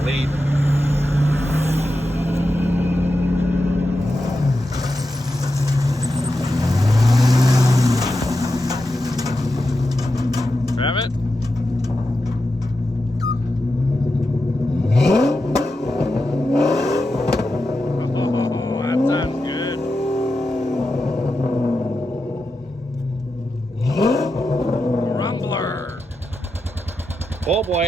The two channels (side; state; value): both; normal; correlation 0.89